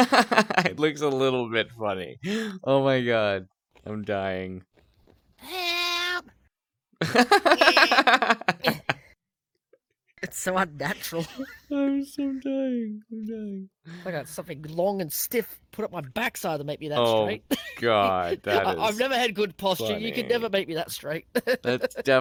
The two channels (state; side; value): identical; both; correlation 1.00